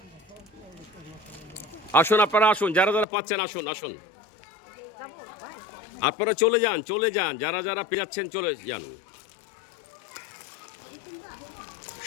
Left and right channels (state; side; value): drops out; right; at 3.1 s